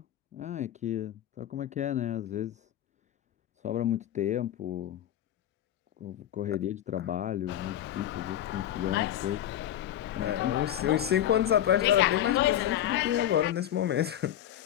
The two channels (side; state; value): right; quieter; 11.6 dB